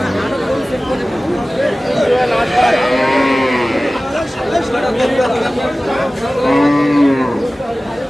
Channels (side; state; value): both; normal; correlation 0.97